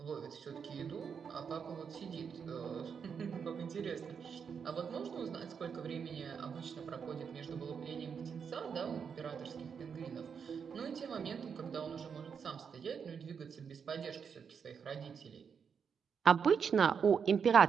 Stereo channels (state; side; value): quieter; left; 6.6 dB